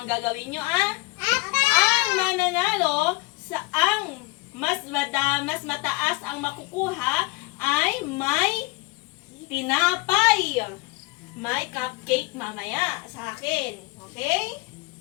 gagawin nyo, Ang mananalo sa mas mataas ang makukuha ay may tinapay. May cupcake mamaya sa akin. Okay?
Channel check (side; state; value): right; quieter; 23.2 dB